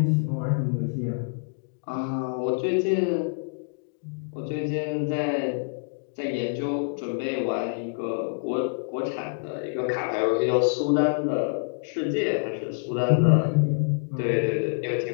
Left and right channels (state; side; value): silent; right; digital silence